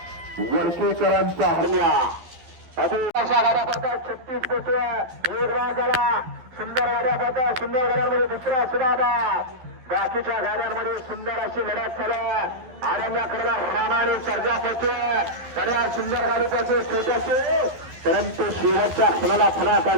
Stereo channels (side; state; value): left; late; 12 ms